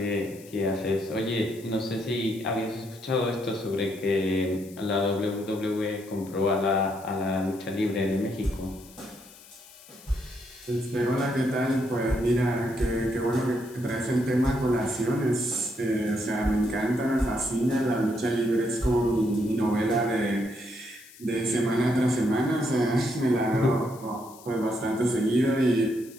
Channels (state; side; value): noise; left; hiss, 21 dB below the sound